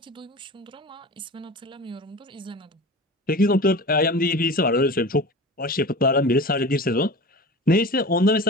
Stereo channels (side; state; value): both; normal; correlation 0.34